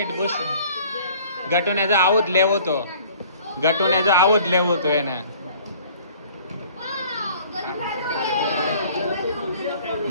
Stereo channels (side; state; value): both; inverted; correlation -0.52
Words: બુશ. ગટુને જો આવું જ લેવું તો એને.